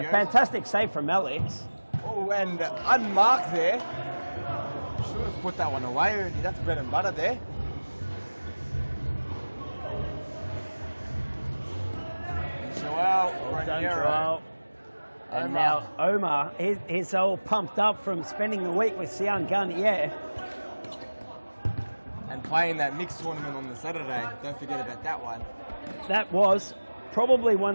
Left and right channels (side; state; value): both; inverted; correlation -1.00